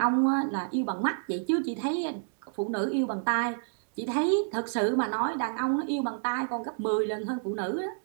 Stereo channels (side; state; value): left; silent; digital silence